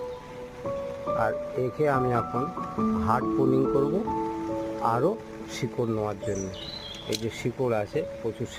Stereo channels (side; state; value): both; identical; correlation 1.00